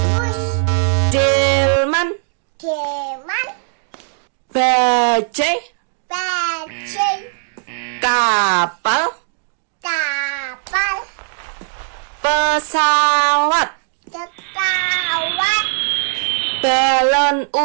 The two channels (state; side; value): silent; left; digital silence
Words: delman, delman, bajai, bajai, kapal, kapal, pesawat, pesawat, balon